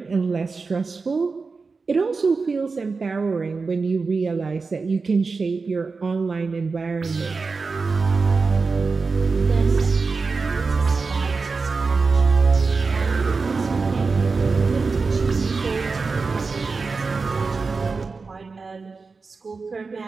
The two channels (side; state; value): left; quieter; 4.4 dB